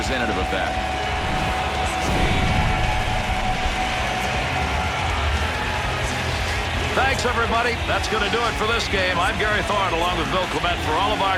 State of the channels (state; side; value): identical; both; correlation 1.00